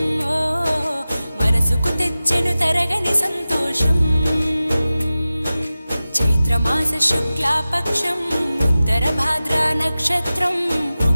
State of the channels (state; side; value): inverted; both; correlation -0.96